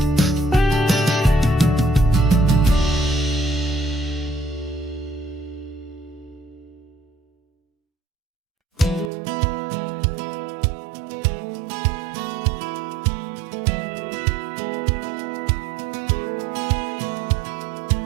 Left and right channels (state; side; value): drops out; left; at 9.1 s